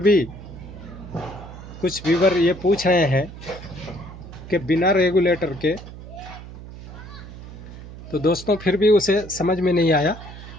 कुछ व्यूवर ये पूछ रहे हैं कि बिना रेगुलेटर के, तो दोस्तों फिर भी उसे समझ में नहीं आया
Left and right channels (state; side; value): noise; right; hum, 14 dB below the sound